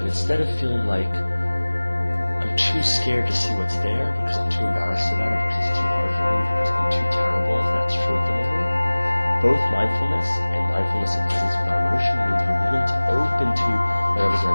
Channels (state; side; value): inverted; both; correlation -1.00